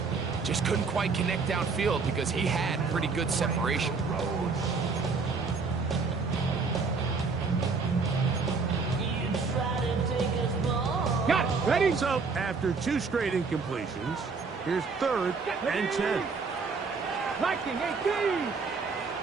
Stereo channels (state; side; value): quieter; left; 4.6 dB